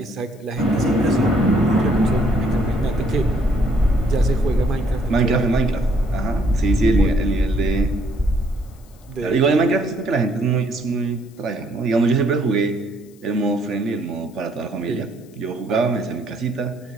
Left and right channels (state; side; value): noise; left; hiss, 29 dB below the sound